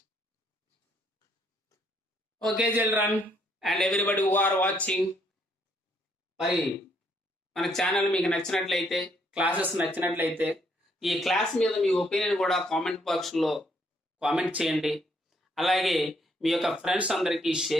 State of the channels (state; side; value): normal; both; correlation 0.70